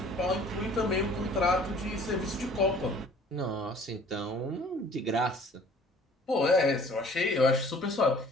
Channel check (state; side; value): normal; both; correlation 0.52